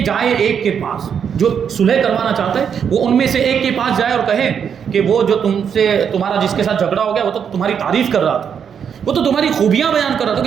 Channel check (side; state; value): left; quieter; 7.5 dB